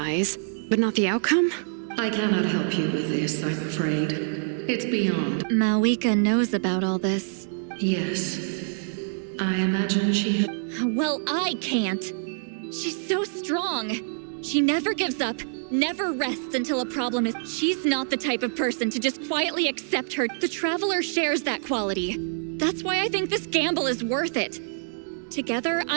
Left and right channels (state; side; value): silent; left; digital silence